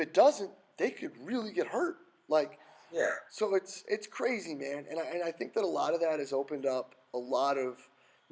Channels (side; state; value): both; identical; correlation 1.00